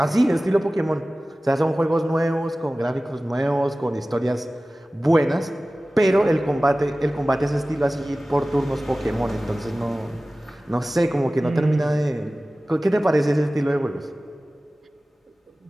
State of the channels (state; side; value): normal; both; correlation 0.97